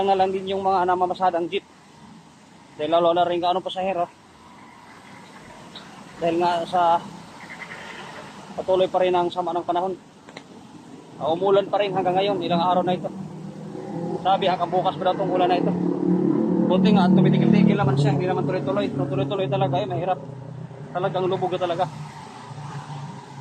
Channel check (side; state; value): both; identical; correlation 1.00